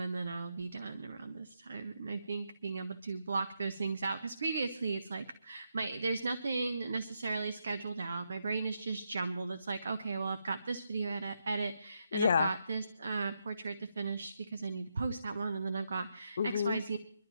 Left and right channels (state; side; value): inverted; both; correlation -0.82